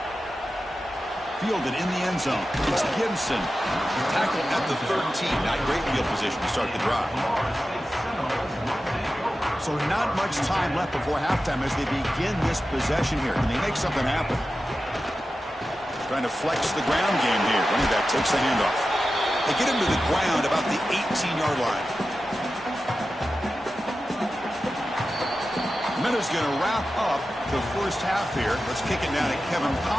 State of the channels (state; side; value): normal; both; correlation 0.93